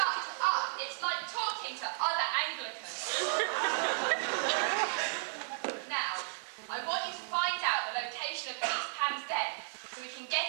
up! It's like talking to other Anglicans. Now, I want you to find out the location of Peter Pan's den so we can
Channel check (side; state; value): left; silent; 55 dB below the other